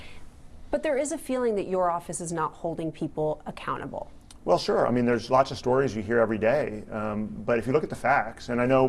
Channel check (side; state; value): both; identical; correlation 1.00